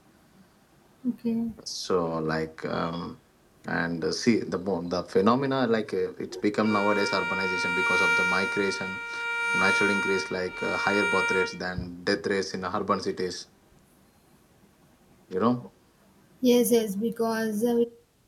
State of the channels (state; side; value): identical; both; correlation 1.00